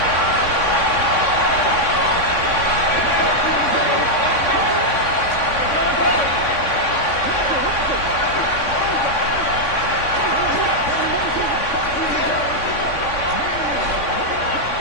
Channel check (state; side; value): late; right; 3.6 ms